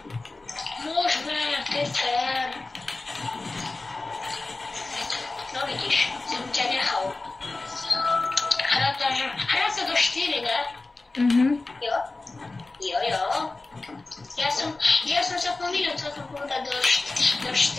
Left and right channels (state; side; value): quieter; right; 3.3 dB